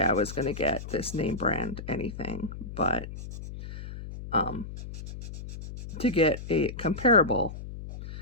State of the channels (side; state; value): left; noise; hum, 10 dB below the sound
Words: I was going to get this name brand anything, but to get a comparable